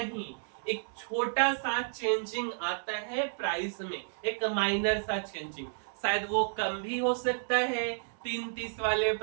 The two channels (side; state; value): left; silent; digital silence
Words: एक छोटा सा चेंजिंग आता है प्राइस में, एक माइनर सा चेंजिंग। शायद वो कम भी हो सकता है 3:30 वाले